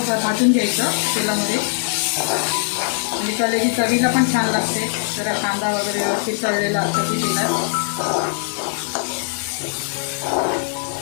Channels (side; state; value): right; silent; 60 dB below the other